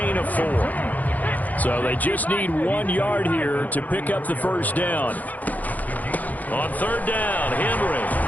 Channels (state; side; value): late; right; 0.080 ms